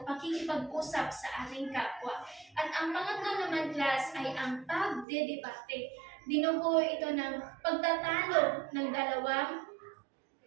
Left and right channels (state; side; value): drops out; left; at 5.1 s